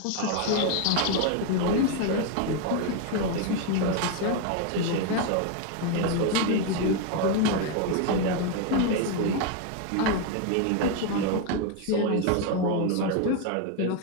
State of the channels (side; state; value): both; different; correlation 0.01